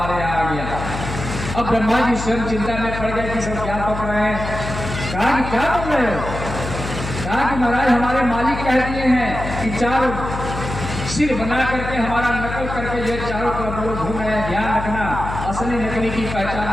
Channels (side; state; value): left; noise; hum, 7 dB below the sound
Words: यहाँ आ गया। अब ब्रह्मा जी स्वयं चिंता में पड़ गए कि सब क्या पक रहे हैं। कहा कि क्या पक रहे हो? कहा कि महाराज हमारे मालिक कह दिए हैं कि 4 सिर बना करके हमारा नकल करके जो चारों तरफ लोग घूम रहे हैं, ध्यान रखना, असली नकली की